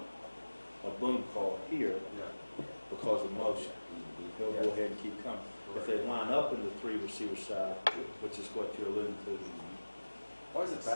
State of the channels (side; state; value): both; inverted; correlation -1.00